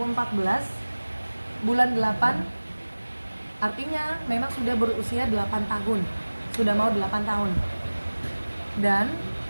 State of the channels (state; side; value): inverted; both; correlation -1.00